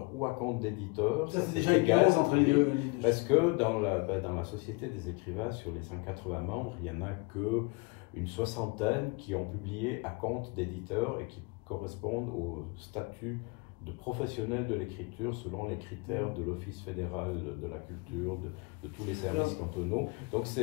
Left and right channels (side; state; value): right; quieter; 27.6 dB